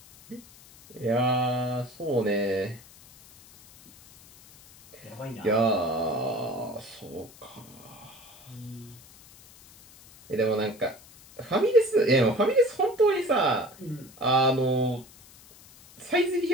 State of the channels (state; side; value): noise; left; hiss, 23 dB below the sound